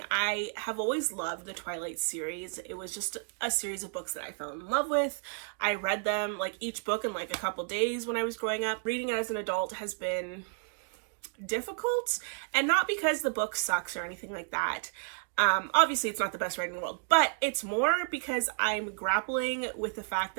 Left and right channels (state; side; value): silent; left; 57 dB below the other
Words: I have always loved the Twilight series. It was just a series of books that I fell in love with. I read them, like each book in like a couple days when I was growing up. Reading it as an adult has been difficult, and not because the book sucks or anything like that. Obviously it's not the best writing in the world, but it's more because I'm grappling with the fact